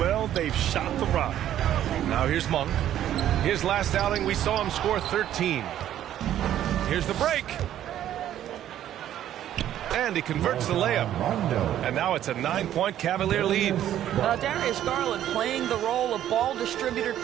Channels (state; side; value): quieter; left; 11.6 dB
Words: they've shot the rock. Now here's Monk. His last outing, we saw him score 13. Here's the break. And he converts the layup. And now it's a 9-point Cavalier lead. Darius Garland playing the role of ball distributor